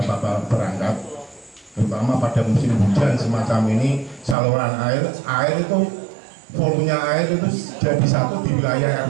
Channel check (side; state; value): left; drops out; at 4.4 s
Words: berangkat, terutama pada musim hujan semacam ini. Saluran air itu volumenya air itu jadi satu di wilayah